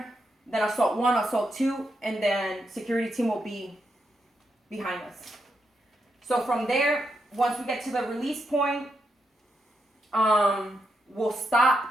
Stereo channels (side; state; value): both; normal; correlation 0.82